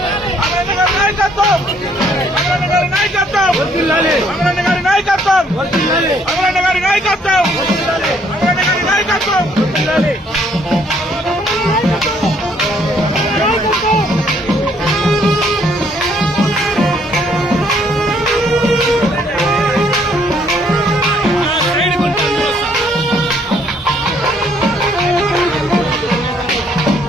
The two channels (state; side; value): normal; both; correlation 0.66